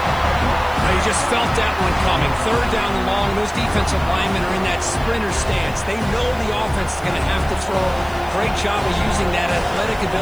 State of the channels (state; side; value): noise; left; hiss, 23 dB below the sound